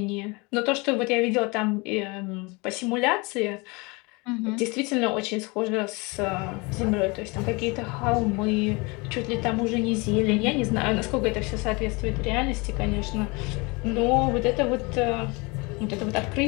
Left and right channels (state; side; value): quieter; right; 27.3 dB